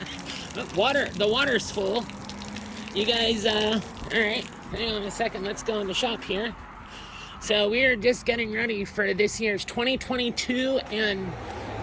The water's full. You guys, all right. Hang on a second. Let's go in the shop here. So we are just getting ready for this year's 2022 and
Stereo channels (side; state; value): both; identical; correlation 1.00